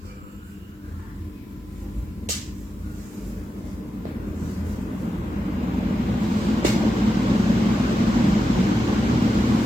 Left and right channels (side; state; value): both; normal; correlation 0.89